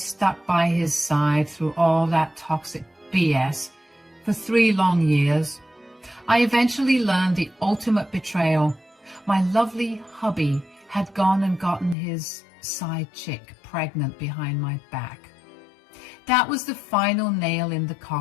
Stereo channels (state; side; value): drops out; right; at 12.0 s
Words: by his side through all that toxic BS for 3 long years, I eventually learned the ultimate betrayal. My lovely hubby had gone and gotten his side chick pregnant behind my back. That was the final nail in the